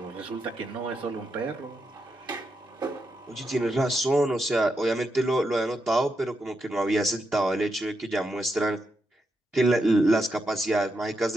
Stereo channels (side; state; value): both; normal; correlation 0.84